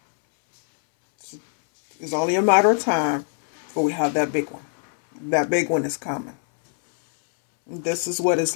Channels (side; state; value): right; silent; 64 dB below the other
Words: It's only a matter of time before we have that big one. That big one is coming. And this is what it's